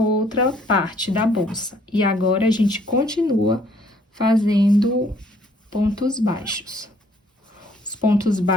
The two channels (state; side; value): normal; both; correlation 0.63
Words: parte da bolsa. E agora, a gente continua fazendo pontos baixos. Os pontos